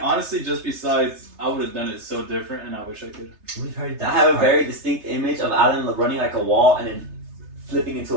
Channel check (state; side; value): late; left; 3.3 ms